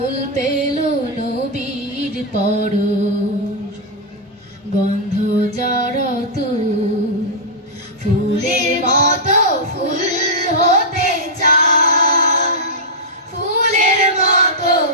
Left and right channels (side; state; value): both; normal; correlation -0.08